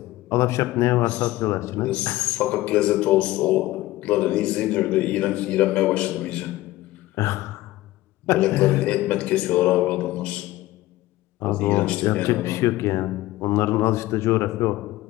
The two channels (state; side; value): quieter; right; 17.0 dB